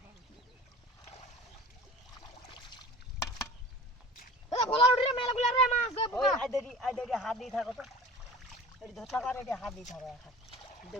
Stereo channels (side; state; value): both; normal; correlation 0.40